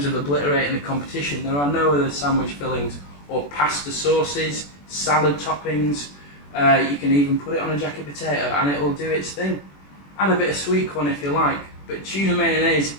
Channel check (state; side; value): late; right; 21 ms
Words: of obliterating the competition. There are no other sandwich fillings or pasta sauces, salad toppings. You can even put it on a jacket potato and it will do its thing. Add a bit of sweet corn if you like. But tuna mayonnaise,